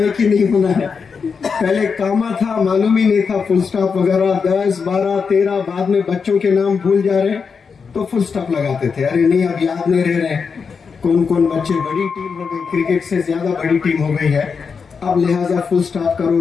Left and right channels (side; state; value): right; quieter; 5.6 dB